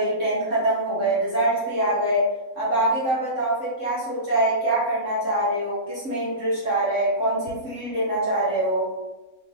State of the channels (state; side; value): late; left; 3.7 ms